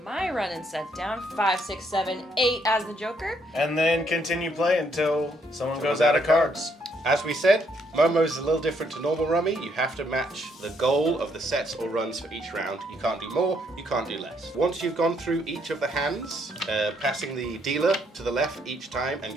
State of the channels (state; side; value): normal; both; correlation 0.71